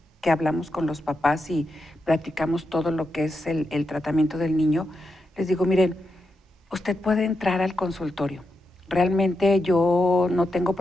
que hablamos con los papás y platicamos todo lo que es el tratamiento del niño, les digo, miren, usted puede entrar al consultorio. Realmente yo no tengo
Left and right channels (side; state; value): both; normal; correlation 0.86